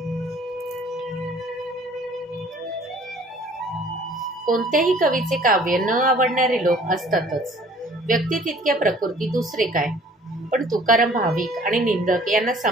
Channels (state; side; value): normal; both; correlation 0.54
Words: कोणत्याही कवीचे काव्य न आवडणारे लोक असतातच। व्यक्ती तितक्या प्रकृती दुसरे काय। पण तुकाराम भाविक आणि निंदक यांना